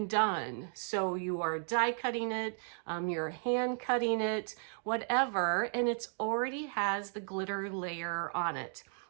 done. So you are die cutting it, you're hand cutting it, whatever, and it's already has the glitter layer on it.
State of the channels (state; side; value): silent; left; 55 dB below the other